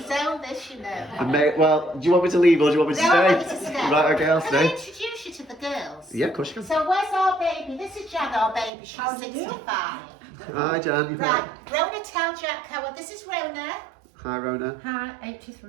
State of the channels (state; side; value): drops out; left; at 8.7 s